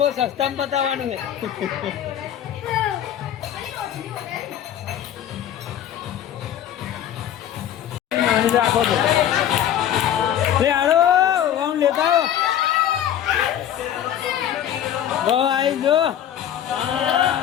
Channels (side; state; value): right; quieter; 10.6 dB